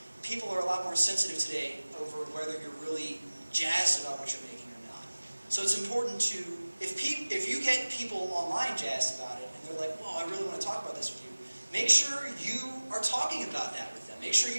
People are a lot more sensitive today over whether you're really jazzed about what you're making or not. So it's important to, if you get people online jazzed about it, and they're like, well, I really want to talk about this with you, make sure you are talking about that with them. Make sure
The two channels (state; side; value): inverted; both; correlation -1.00